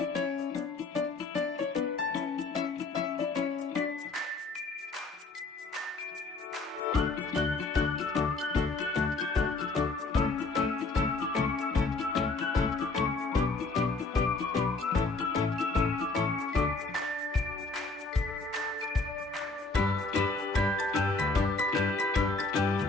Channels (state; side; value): quieter; right; 3.6 dB